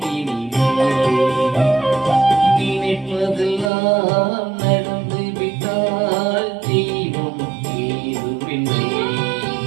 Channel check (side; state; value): left; drops out; at 3.7 s